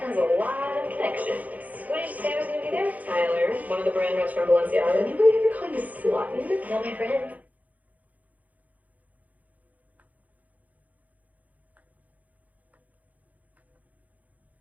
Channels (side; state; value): left; late; 0.077 ms